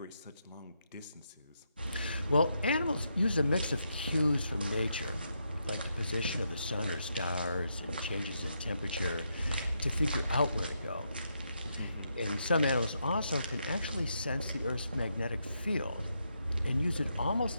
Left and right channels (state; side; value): inverted; both; correlation -0.81